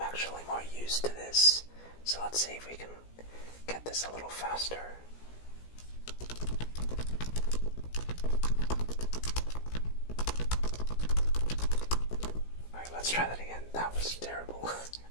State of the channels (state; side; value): late; right; 17 ms